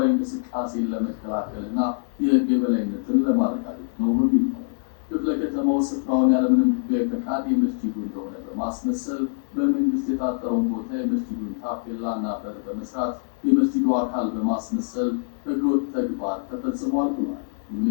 እንቅስቃሴን ለመከላከልና የሕግ የበላይነትን ለማረጋገጥ ነው በሚል ነው። ክፍለ ከተማው ስፍራውን ያለምንም ሕጋዊ ፈቃድ የመስጂዱ እንደሆነ በማስመሰል በመንግስት የታጠረውን ቦታ የመስጂዱን ታፔላና በር በመስራት የመስጂዱ አካል በማስመሰል ሕገወጥ ተግባር ተፈጽሟል ብሏል። ይሁን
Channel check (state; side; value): silent; right; digital silence